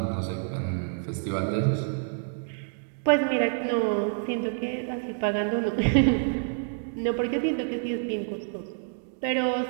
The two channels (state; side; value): silent; left; digital silence